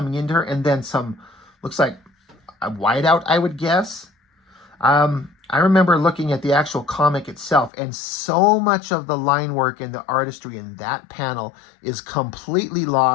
into her, and then some, looks like a whiteout, I would guess. I remember looking at the actual comic itself, and so much of the line work and the artistry in that panel is completely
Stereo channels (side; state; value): right; drops out; at 7.7 s